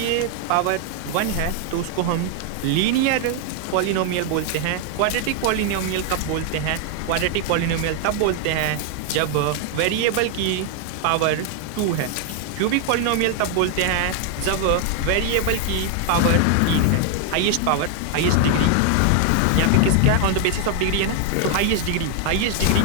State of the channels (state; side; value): different; both; correlation 0.00